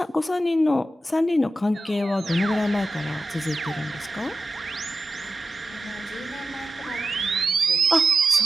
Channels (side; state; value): both; normal; correlation 0.91